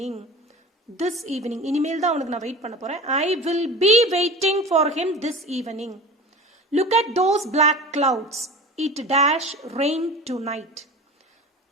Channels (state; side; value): normal; both; correlation 0.35